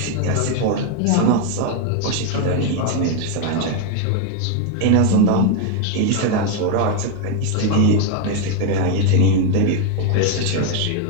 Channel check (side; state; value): both; different; correlation 0.01